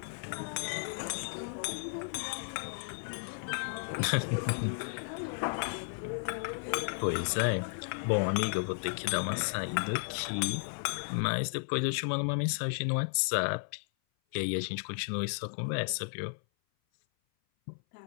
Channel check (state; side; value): silent; right; 55 dB below the other